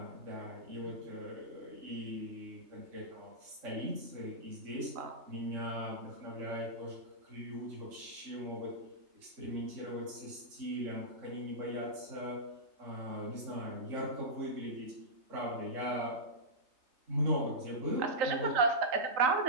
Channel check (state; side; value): late; left; 3.3 ms